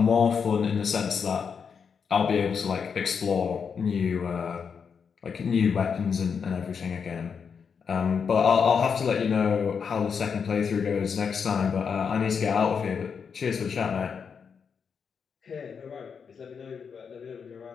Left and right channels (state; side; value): quieter; right; 6.3 dB